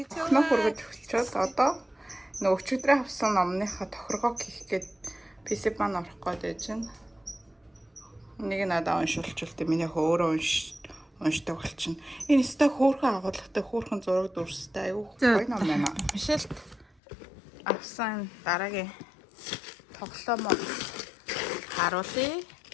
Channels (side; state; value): right; drops out; at 16.9 s